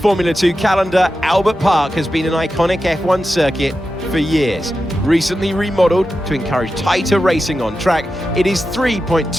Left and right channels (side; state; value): both; normal; correlation 0.91